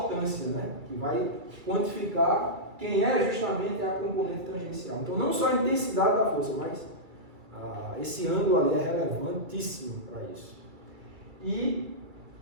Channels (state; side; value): late; left; 2.3 ms